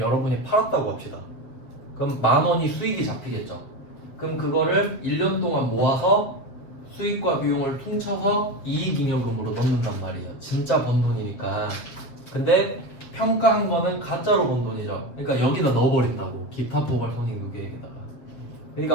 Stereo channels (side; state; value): right; late; 7.7 ms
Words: 팔았다고 합시다. 그럼 만원이 수익이 잡히겠죠. 그럼 그거를 1년 동안 모아서 수익과 비용을 퉁쳐서 이익잉여금으로 넣는단 말이에요. 진짜 번 돈이니까. 근데 평가한 거는 가짜로 번 돈이죠. 그러니까 여기다 넣어버린다고. 기타 포괄 손익 누계에다가. 그러니까